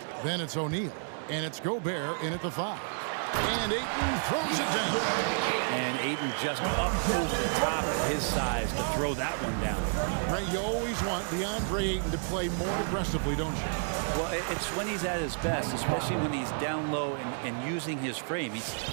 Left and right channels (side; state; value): left; silent; 57 dB below the other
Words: Then it's O'Neal. And it's Gobert in at the 5. And Ayton throws it down. And Ayton just up over the top at his size to throw that one down. Ray, you always want DeAndre Ayton to play more aggressively, don't you? Well, it's when he's at his best, especially when he's down low and using his frame.